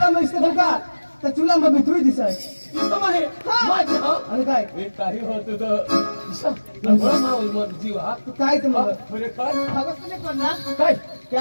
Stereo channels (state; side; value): inverted; both; correlation -1.00